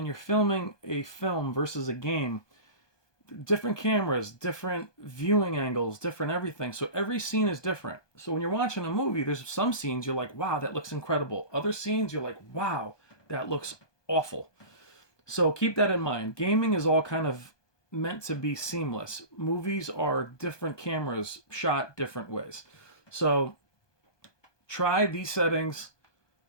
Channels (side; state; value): right; late; 1.2 ms